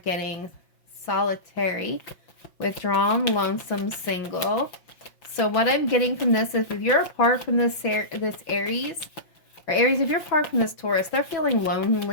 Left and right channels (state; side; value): late; right; 5.6 ms